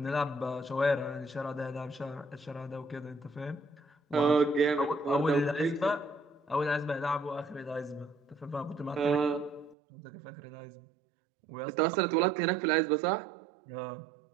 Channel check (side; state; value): left; drops out; at 9.8 s